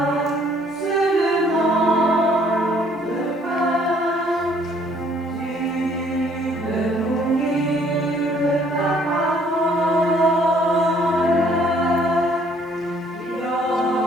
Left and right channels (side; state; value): both; normal; correlation 0.62